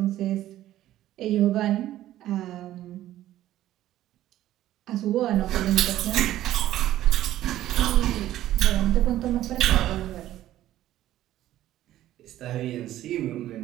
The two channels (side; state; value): left; quieter; 13.6 dB